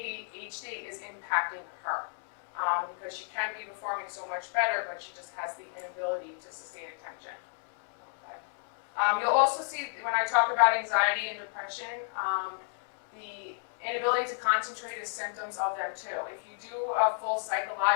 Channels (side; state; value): right; silent; digital silence